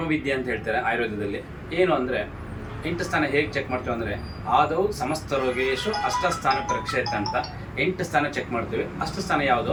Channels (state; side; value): identical; both; correlation 1.00